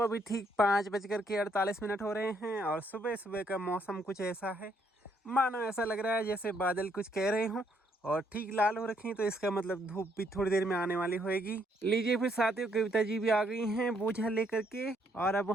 अभी ठीक 5:48 हो रहे हैं और सुबह सुबह का मौसम कुछ ऐसा है, मानो ऐसा लग रहा है जैसे बादल कुछ कह रहे हों और ठीक लाल हो रखी, तो इसका मतलब धूप भी थोड़ी देर में आने वाली होगी। लीजिए फिर साथियों, कविता जी भी आ गई हैं बोझा लेकर के, और अब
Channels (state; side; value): normal; both; correlation 0.71